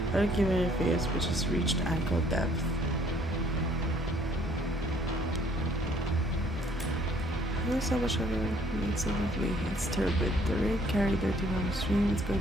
I don't give any face, which has reached ankle depth. So much of it makes it lovely. It's turbid. The rain carried dirty down the stream. It's going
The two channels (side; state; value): both; normal; correlation 0.62